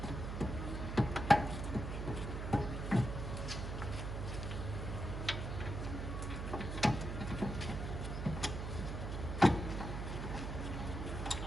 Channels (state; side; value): noise; right; hum, 4 dB below the sound